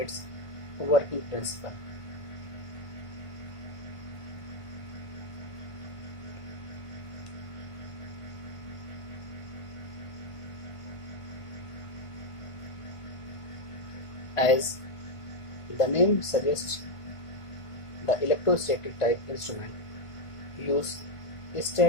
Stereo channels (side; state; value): right; late; 1.5 ms